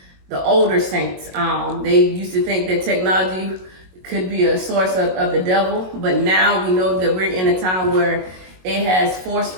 saints. They used to think that technology could be a source of the devil, but now we know that we're in a time where it has forced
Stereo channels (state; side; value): late; left; 22 ms